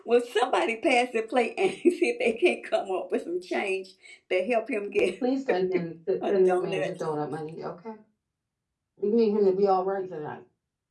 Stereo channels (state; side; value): identical; both; correlation 1.00